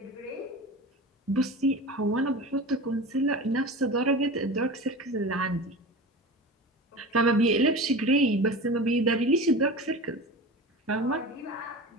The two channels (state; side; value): normal; both; correlation 0.31